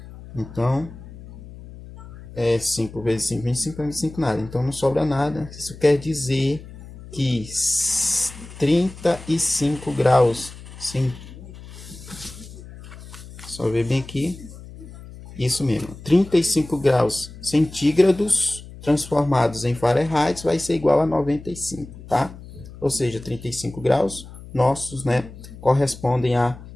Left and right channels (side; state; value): left; noise; hum, 16 dB below the sound